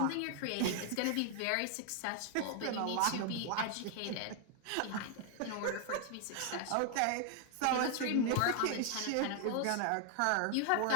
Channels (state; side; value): different; both; correlation 0.00